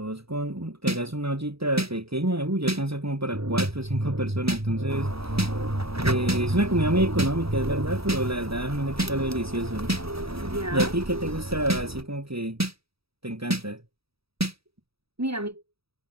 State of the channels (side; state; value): left; late; 0.77 ms